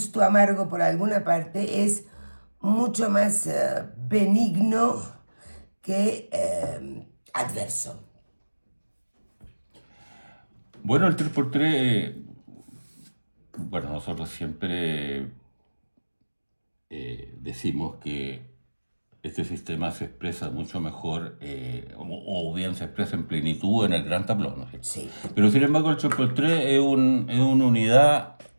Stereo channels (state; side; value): inverted; both; correlation -1.00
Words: amargo por alguna parte, es mucho más benigno que adverso. Bueno, el 3x3, bueno, nosotros siempre decimos que este sistema se expresa mucho mejor, o bien se expresa en plenitud en el gran tablón, ¿no es cierto? Sí. Pero sin embargo el 3x3 es una unidad